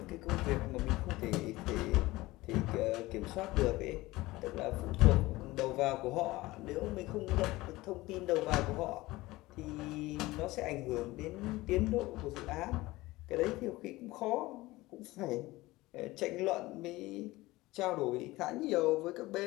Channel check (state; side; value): quieter; right; 19.4 dB